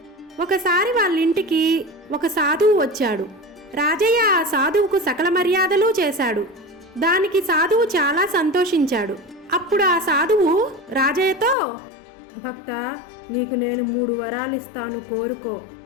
ఒకసారి వాళ్ళింటికి ఒక సాధువు వచ్చాడు. రాజయ్య ఆ సాధువుకు సకల మర్యాదలు చేశాడు. దానికి సాధువు చాలా సంతోషించాడు. అప్పుడు ఆ సాధువు రాజయ్యతో, భక్త, నీకు నేను 3 వరాలు ఇస్తాను, కోరుకో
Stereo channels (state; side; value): drops out; right; at 11.6 s